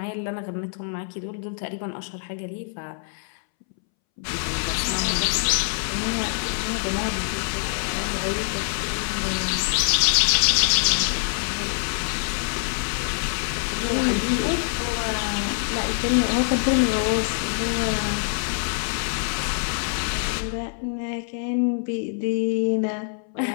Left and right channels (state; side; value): silent; right; 62 dB below the other